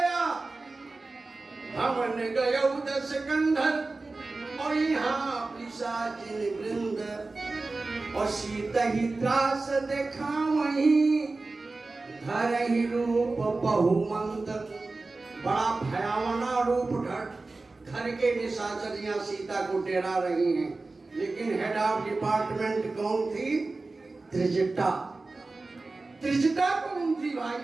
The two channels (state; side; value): quieter; left; 3.5 dB